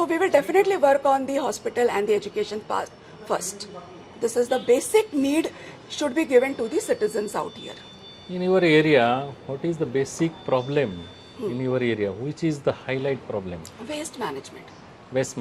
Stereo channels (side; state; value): both; identical; correlation 1.00